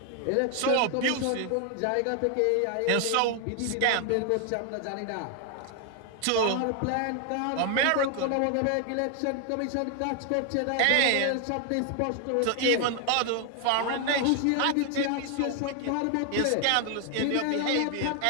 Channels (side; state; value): both; different; correlation 0.00